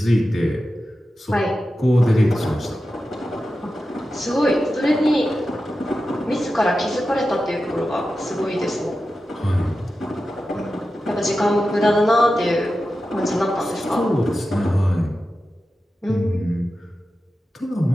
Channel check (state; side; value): normal; both; correlation 0.92